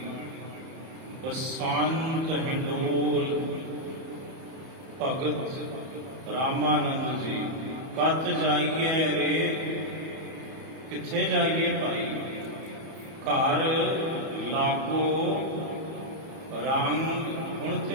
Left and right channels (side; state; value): left; late; 31 ms